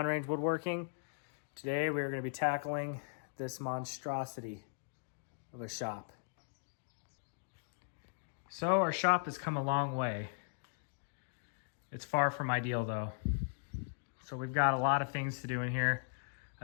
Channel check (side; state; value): right; silent; digital silence